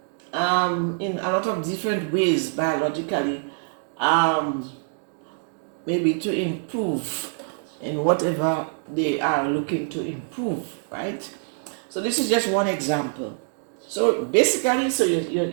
in a lot of different ways biologically, maybe to improve in whatever they are looking to improve, right? So this is just one example. So basically, so you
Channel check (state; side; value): silent; left; digital silence